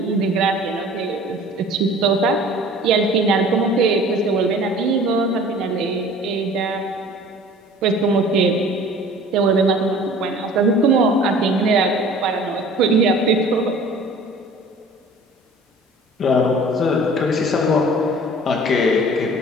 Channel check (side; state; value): both; normal; correlation 0.46